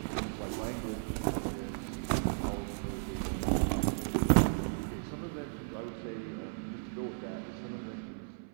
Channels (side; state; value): left; silent; 54 dB below the other